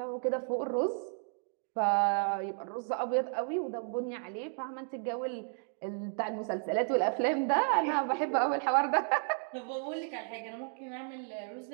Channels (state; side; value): silent; left; 56 dB below the other